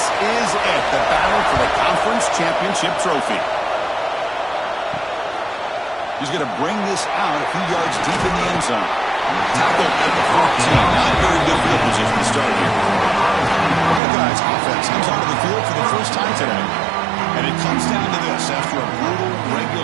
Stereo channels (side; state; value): left; drops out; at 14.0 s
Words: it, the battle for the conference championship trophy. He's going to bring this out a few yards deep in the end zone. Tackled at the 14. Not very good field position to start here. Buckeyes offense comes onto the field for the first time today. And it comes down to this. After a brutal